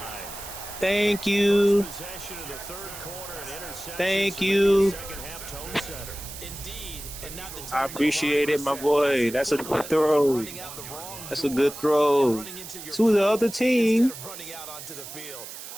Thank you. Thank you. I appreciate it, my boy. That's a good throw. That's a good throw. To the other team.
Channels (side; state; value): right; noise; hiss, 12 dB below the sound